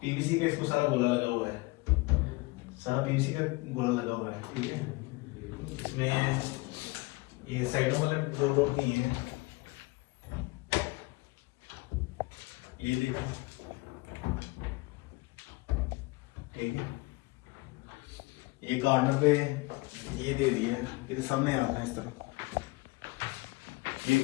पीवीसी का इसको सारा गोला लगा हुआ है, सारा पीवीसी का गोला लगा हुआ है। ठीक है, इसमें ये साइडों में जो रोड नहीं है, ये देखो। ठीक है, ये कॉर्नर पे ये दे दिया है, फिर सामने आता है इस तरह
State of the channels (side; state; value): right; quieter; 23.9 dB